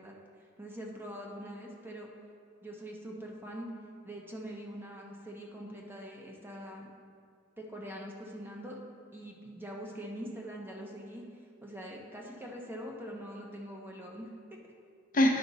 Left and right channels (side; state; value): both; normal; correlation 0.67